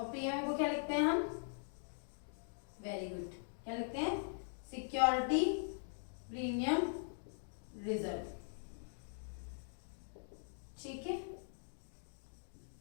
प्रीमियम को क्या लिखते हैं हम, वेरी गुड, क्या लिखते हैं, सिक्योरिटी प्रीमियम रिजर्व, ठीक है।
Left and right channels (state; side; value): silent; right; digital silence